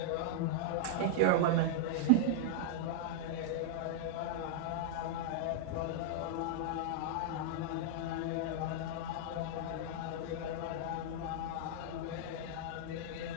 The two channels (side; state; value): both; different; correlation -0.01